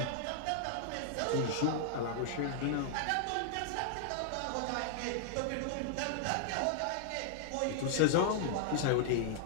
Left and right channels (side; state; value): both; different; correlation -0.01